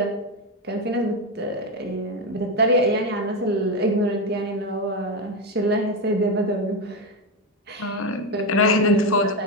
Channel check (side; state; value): both; normal; correlation 0.11